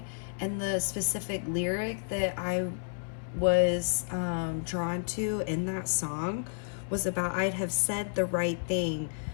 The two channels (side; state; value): right; silent; 57 dB below the other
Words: and the specific lyric that I was drawn to in that song was about, I'd have said the right thing,